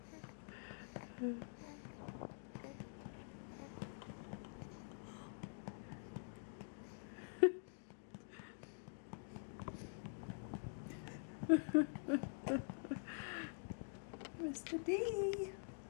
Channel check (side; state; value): right; silent; digital silence